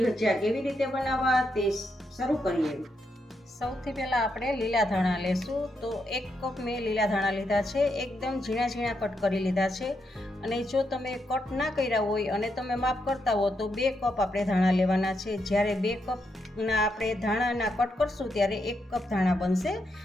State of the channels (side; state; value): both; normal; correlation 0.81